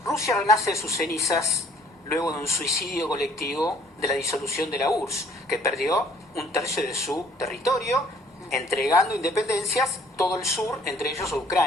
Rusia renace de sus cenizas luego de un suicidio colectivo de la disolución de la URSS, que perdió un tercio de su territorio, entregando independencias, todo el sur, entre ellos a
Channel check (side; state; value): both; normal; correlation 0.59